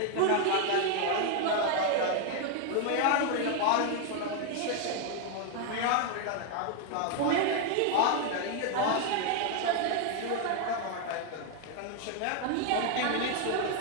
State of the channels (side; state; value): both; different; correlation 0.01